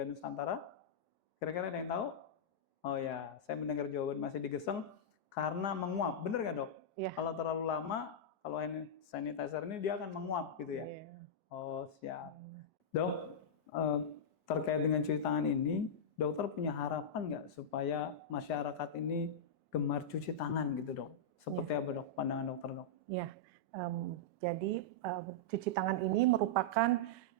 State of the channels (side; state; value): right; late; 1.2 ms